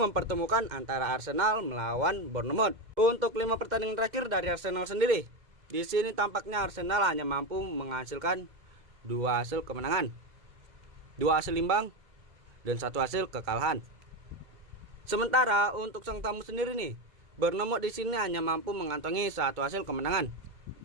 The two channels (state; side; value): late; left; 2.0 ms